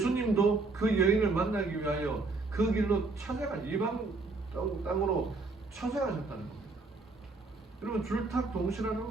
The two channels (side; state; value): left; quieter; 3.6 dB